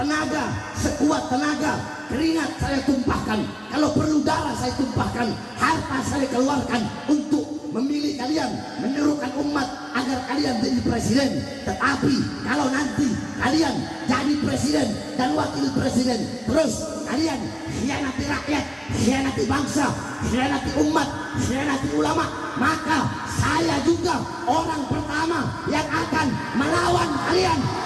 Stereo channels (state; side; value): identical; both; correlation 1.00